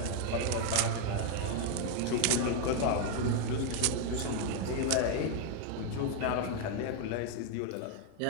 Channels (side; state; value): both; different; correlation 0.01